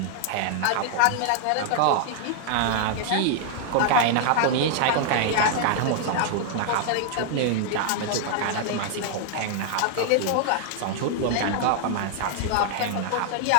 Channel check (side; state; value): both; different; correlation 0.00